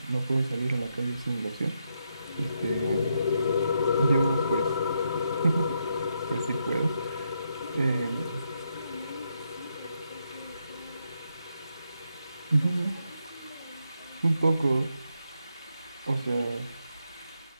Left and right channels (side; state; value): both; inverted; correlation -0.81